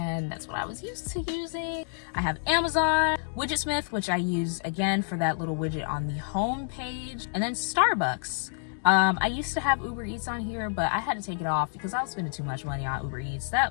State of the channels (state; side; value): silent; right; digital silence